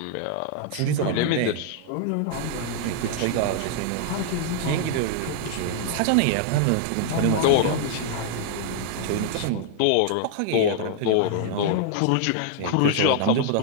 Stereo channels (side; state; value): both; different; correlation -0.01